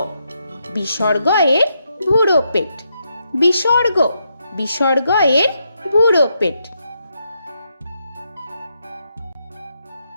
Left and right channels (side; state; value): both; inverted; correlation -0.80